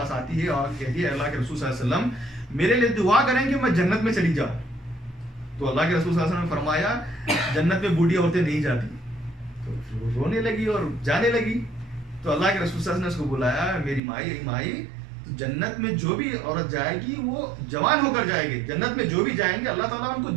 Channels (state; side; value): drops out; left; at 14.0 s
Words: آتی ہے اور کہتی ہے اللہ کے رسول صلی اللہ علیہ وسلم میرے لیے دعا کریں کہ میں جنت میں چلی جاؤں. تو اللہ کے رسول صلی اللہ علیہ وسلم نے فرمایا جنت میں بوڑھی عورتیں نہیں جاتی. تو وہ رونے لگی اور جانے لگی. تو اللہ کے رسول صلی اللہ علیہ وسلم نے اس کو بلایا، میری مائی تو جنت میں جو بھی عورت جائے گی وہ جوان ہو کر جائے گی. جنت میں جو بھی جائیں گے اللہ تعالیٰ ان کو